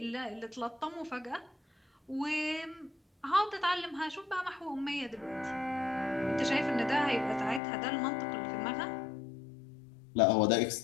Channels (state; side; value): drops out; right; at 7.6 s